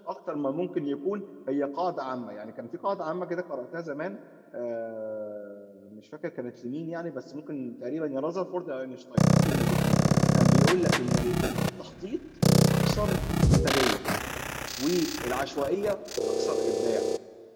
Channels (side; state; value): both; identical; correlation 1.00